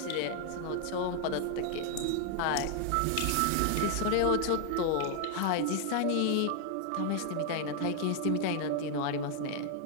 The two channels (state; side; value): different; both; correlation 0.00